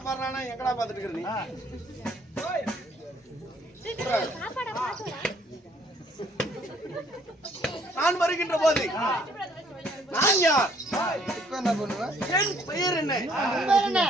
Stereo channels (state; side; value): normal; both; correlation 0.63